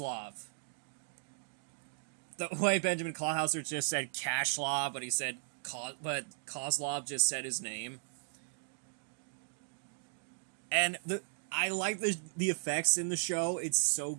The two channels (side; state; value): left; silent; digital silence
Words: The way Benjamin Clawhauser just said Kashlov, but he said but Kozlov just said his name. And I like the effects in the show. It's so